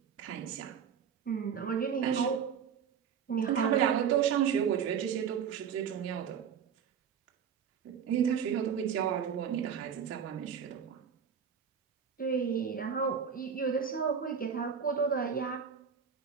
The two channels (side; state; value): left; quieter; 7.5 dB